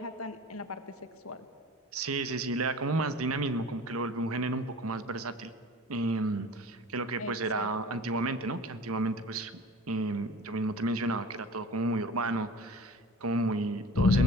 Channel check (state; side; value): normal; both; correlation 0.40